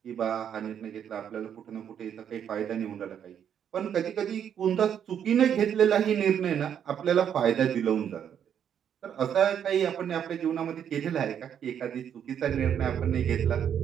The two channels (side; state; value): left; quieter; 8.8 dB